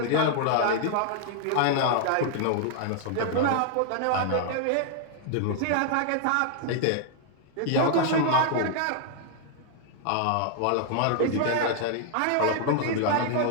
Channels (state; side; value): different; both; correlation 0.00